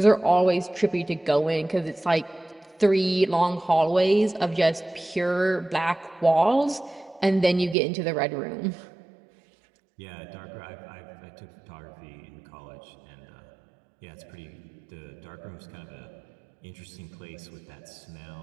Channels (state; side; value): drops out; left; at 7.8 s